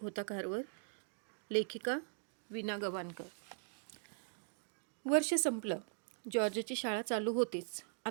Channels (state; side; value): silent; left; 51 dB below the other